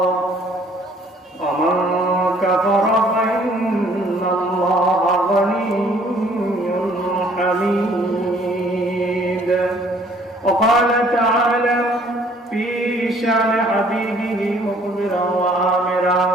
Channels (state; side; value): normal; both; correlation 0.58